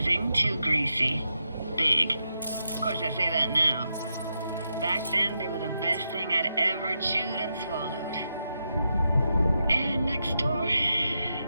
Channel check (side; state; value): both; inverted; correlation -0.85